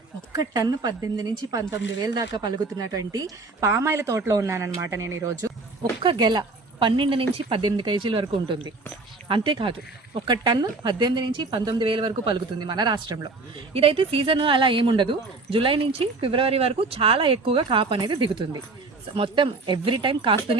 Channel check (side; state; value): left; quieter; 3.6 dB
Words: ఒక్క ton 18 నుంచి 19,000 దాకా పలుకుతున్నటువంటి పామాయిల తోటలో ఉన్నానన్నమాట నేను ఈరోజు. ఒక్క గెల 12 నుంచి 18 కేజీల వరకు ఉంటుంది. అంతేకాదు, ఒక టన్ను 18 నుంచి 19,000 వరకు పలుకుతుంది మన రాష్ట్రంలో. ఇదైతే సీజన్ అలా ఏముండదు. జూలై నుంచి ఫిబ్రవరి వరకు చాలా ఎక్కువగా కాపు అనేది దిగుతుంది. మొత్తం ఎవ్రీ టైం